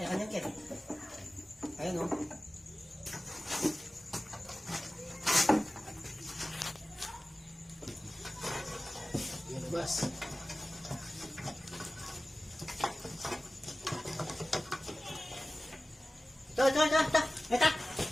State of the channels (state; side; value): normal; both; correlation 0.96